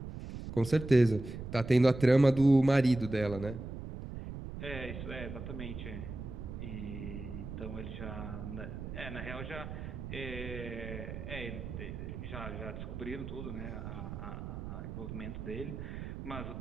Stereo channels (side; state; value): right; noise; rumble, 8 dB below the sound